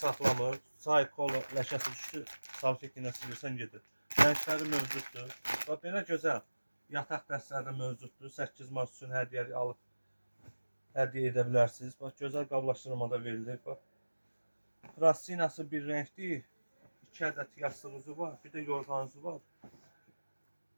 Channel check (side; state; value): both; inverted; correlation -1.00